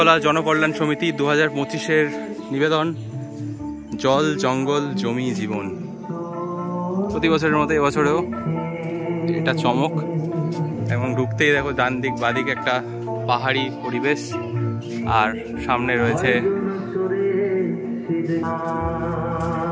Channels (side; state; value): both; identical; correlation 1.00